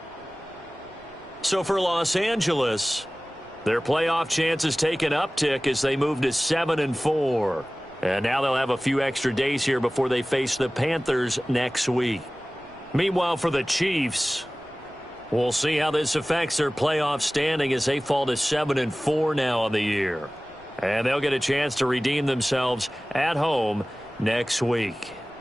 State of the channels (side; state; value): right; noise; rumble, 27 dB below the sound